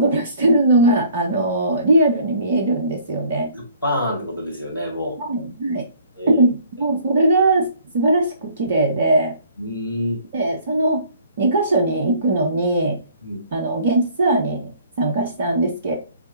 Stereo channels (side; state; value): both; inverted; correlation -0.56